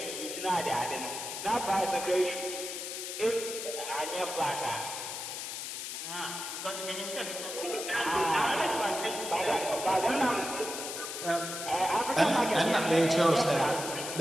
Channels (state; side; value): noise; left; hiss, 6 dB below the sound